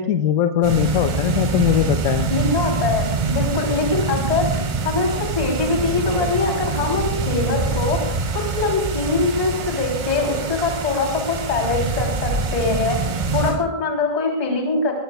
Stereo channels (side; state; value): left; late; 1.5 ms